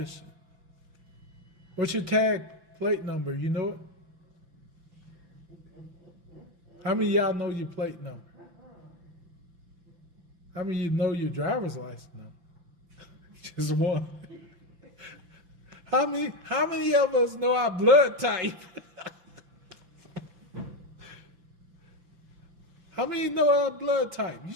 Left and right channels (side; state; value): left; late; 5.8 ms